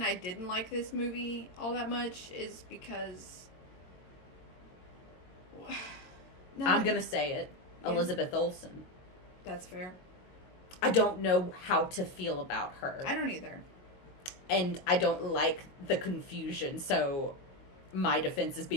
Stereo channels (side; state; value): right; late; 22 ms